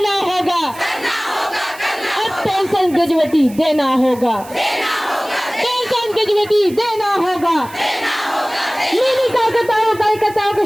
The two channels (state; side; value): noise; right; hiss, 20 dB below the sound